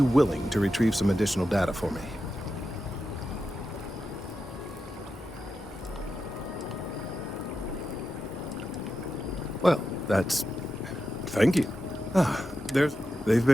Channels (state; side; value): normal; both; correlation 0.89